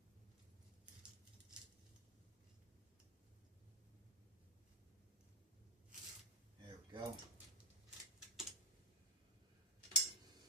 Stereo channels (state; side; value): normal; both; correlation 0.01